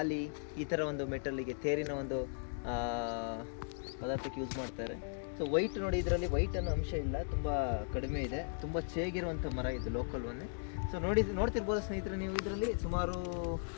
ಈ ಥರ ಒಂದು ಮೆಟಲ್ಲಿಗೆ ತೇರಿನ ಒಂದು ಪದಾರ್ಥಕ್ಕೆ ಯೂಸ್ ಮಾಡ್ತಾರೆ. ಸೊ ವೈಟ್ ನೋಡಿ, ಇದರಲ್ಲಿ ವೈಟ್ ಅನ್ನೋ ಅಂಶ ಇಲ್ಲ, ತುಂಬ ಕಡಿಮೆ ಇದೆ, ತುಂಬ ಚೇಗಿರುವಂಥ ಮರ ಇದು ಲೋಕಲ್ ಒನ್ನೆ. ಸೊ ನೋಡ್ತಿರ್ಬೋದು ಸ್ನೇಹಿತರೆ ನೀವು, ಇದರಲ್ಲಿ ಸುಮಾರು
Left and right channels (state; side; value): silent; right; digital silence